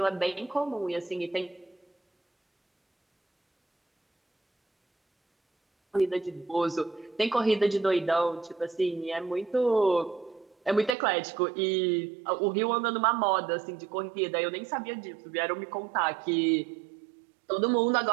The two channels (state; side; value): drops out; left; at 11.0 s